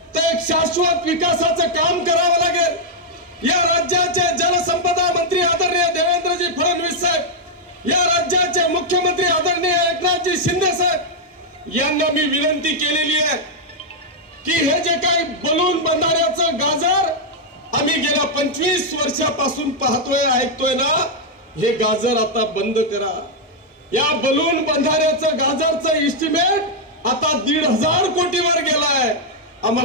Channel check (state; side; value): normal; both; correlation -0.03